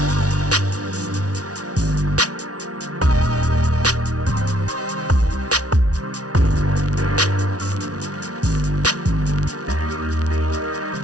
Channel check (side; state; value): left; late; 0.68 ms